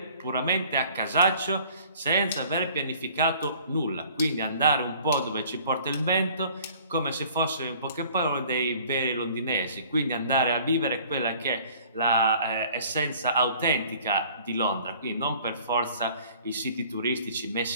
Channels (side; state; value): both; inverted; correlation -0.52